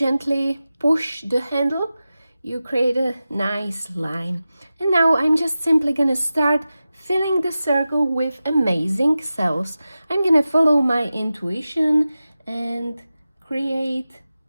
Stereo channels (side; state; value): both; inverted; correlation -0.94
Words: push the handle, you create a nice line. And now I'm just simply gonna start filling the circle with amazing cells. I'm gonna follow my intuition and create